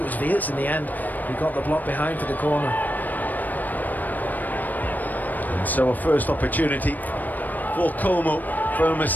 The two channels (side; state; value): right; late; 0.084 ms